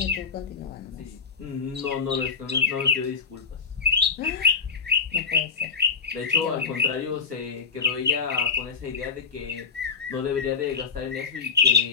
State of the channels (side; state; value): right; quieter; 5.5 dB